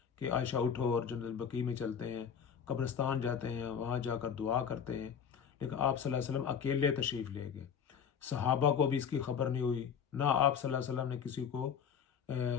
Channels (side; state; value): right; quieter; 7.5 dB